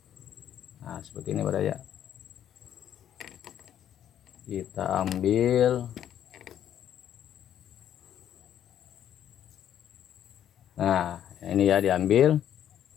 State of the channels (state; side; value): quieter; right; 10.3 dB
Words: Nah, seperti ini Baraya. Kita ambil. Nah, ini ya diambil.